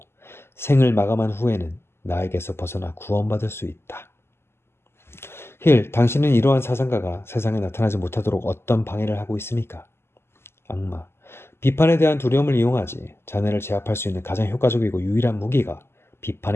생을 마감한 후에는 나에게서 벗어나 구원받을 수 있다. 힐, 당신은 이러한 사상가가 세상에 나타나지 못하도록 어떤 방해를 하고 있습니까? 악마, 비판에 대한 두려움을 이용하지. 자네를 제압할 수 있는 가장 효과적이고 유일한 무기가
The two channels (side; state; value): right; late; 0.12 ms